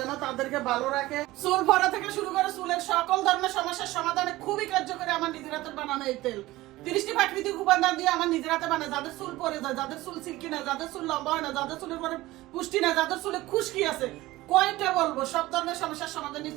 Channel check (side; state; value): left; quieter; 18.1 dB